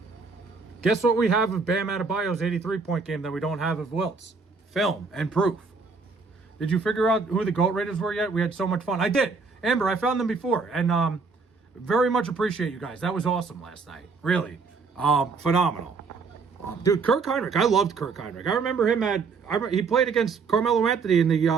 Guess what we have of Bam Adebayo's 83-point game that we don't have of Wilt's? Film and proof. Did you figure out who the GOAT Raiders were yet? We had so much fun. I did. Amber, I found them before. And very much appreciate you guys. That was awesome last night. Really. Phenomenal. Dude, Kirk Heinrich. I loved Kirk Heinrich. I remember him he played against Carmelo Anthony in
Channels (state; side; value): quieter; left; 4.7 dB